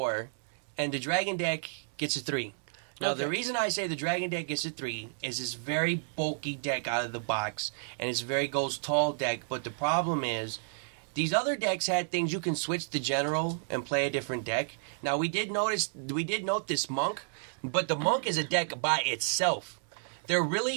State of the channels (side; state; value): left; silent; digital silence